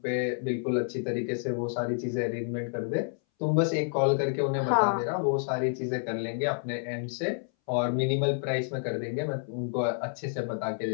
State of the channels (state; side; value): silent; right; 58 dB below the other